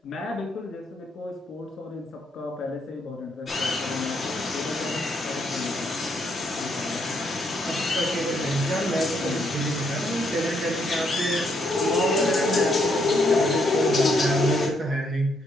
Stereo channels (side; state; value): both; normal; correlation 0.74